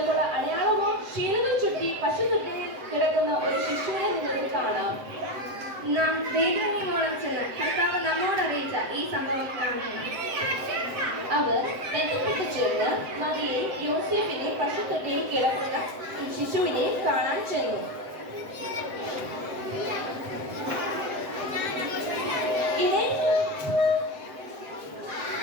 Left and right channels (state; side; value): late; left; 7.7 ms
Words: അടയാളമോ ശീലകൾ ചുറ്റി പശുത്തൊട്ടിയിൽ കിടക്കുന്ന ഒരു ശിശുവിനെ നിങ്ങൾക്ക് കാണാം. നാം ദൈവമോളം ചെന്ന് കർത്താവ് നമ്മോട് അറിയിച്ച ഈ സംഭവം കാണുന്നു. അവർ ബന്ധപ്പെട്ട് ചേർന്ന് മറിയെ യോസേഫിനെ പശുത്തൊട്ടിയിൽ കിടക്കുന്ന ശിശുവിനെ കാണാൻ ചെന്നു.